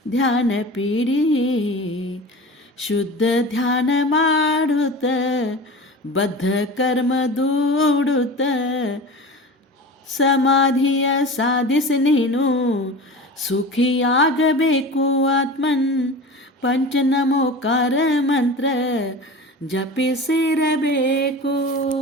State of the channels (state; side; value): normal; both; correlation 0.33